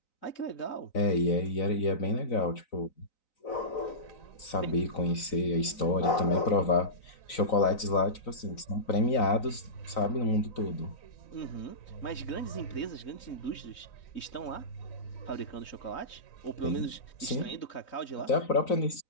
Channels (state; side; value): late; right; 3.9 ms